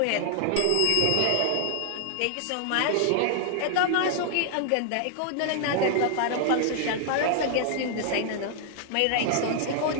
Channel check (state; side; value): different; both; correlation 0.00